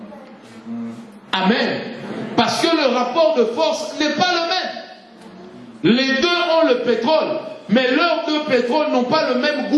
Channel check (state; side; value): identical; both; correlation 1.00